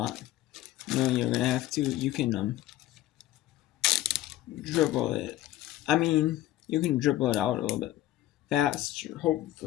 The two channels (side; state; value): right; quieter; 14.6 dB